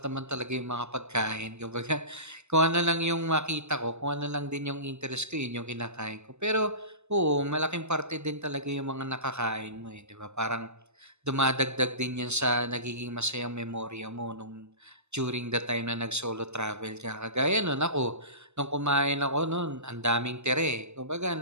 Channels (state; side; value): late; left; 0.82 ms